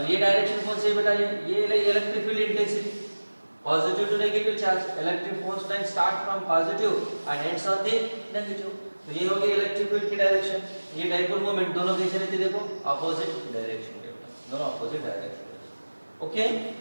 ये डायरेक्शन कौन सी है बेटा, ये electric field intensity positive to negative charge. Electric force line start from positive and ends on the negative. तो ये हो गई इलेक्ट्रिक फील्ड की डायरेक्शन. ये डाइपोल मोमेंट दोनों कैसे रहते देखो, ऑपोजिट डायरेक्शन में, दोनों ऑपोजिट डायरेक्शन में. Okay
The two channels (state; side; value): inverted; both; correlation -1.00